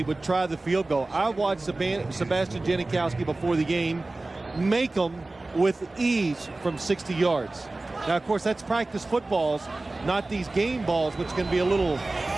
would try the field goal. I watched Sebastian Janikowski before the game make them with ease from 60 yards. Now, of course, that's practice footballs, not these game balls, which can be a little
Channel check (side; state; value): left; quieter; 3.0 dB